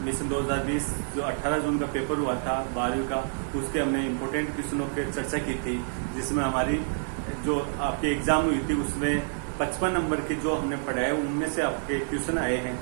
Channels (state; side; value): silent; left; digital silence